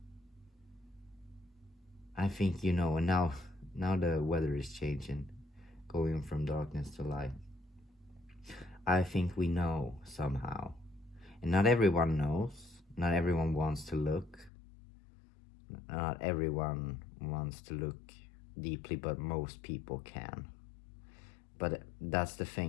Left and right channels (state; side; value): drops out; right; at 14.5 s